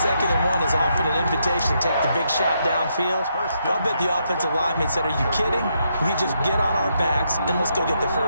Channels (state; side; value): inverted; both; correlation -0.78